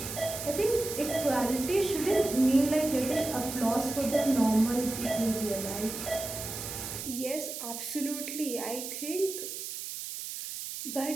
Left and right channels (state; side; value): noise; right; hiss, 7 dB below the sound